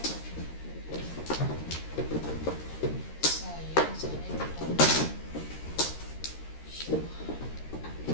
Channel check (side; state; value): right; late; 13 ms